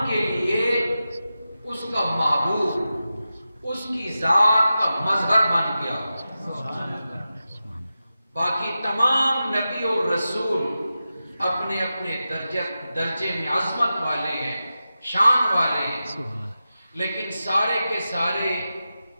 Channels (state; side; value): inverted; both; correlation -0.92